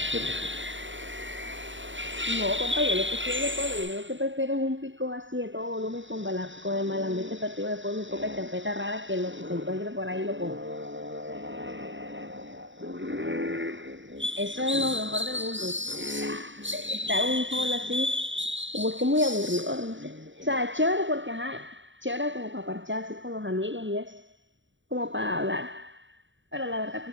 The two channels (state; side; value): late; left; 0.55 ms